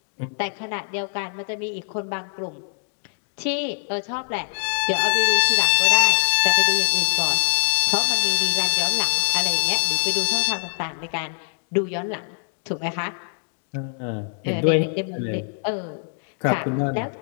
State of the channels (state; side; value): silent; right; digital silence